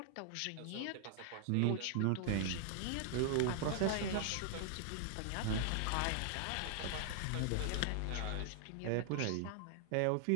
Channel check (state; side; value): different; both; correlation 0.00